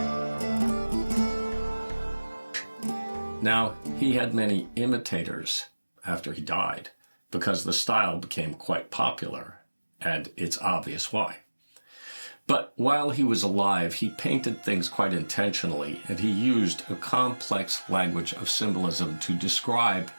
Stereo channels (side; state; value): both; inverted; correlation -1.00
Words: Now, he had many imitators after he died because the style became quite popular, and it's obvious why. But while he was alive, he painted things quite intentionally, and he used a complex language of symbolism to describe